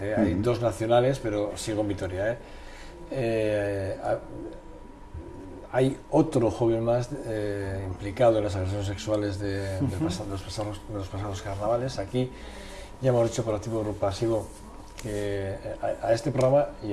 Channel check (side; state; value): both; identical; correlation 1.00